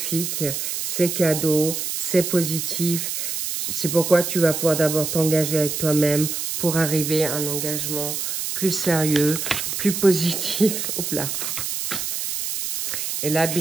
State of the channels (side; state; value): right; noise; hiss, 3 dB below the sound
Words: c'est cadeau, c'est positif. C'est pourquoi tu vas pouvoir d'abord t'engager avec toi-même pour arriver à un engagement plus sérieux, plus positif. Hop là. Et là,